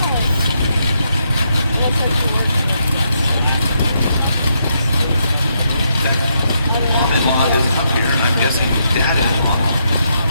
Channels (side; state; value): both; inverted; correlation -0.78